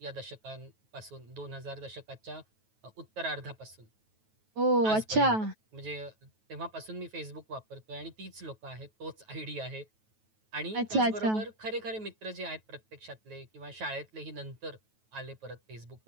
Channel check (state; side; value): late; left; 9.2 ms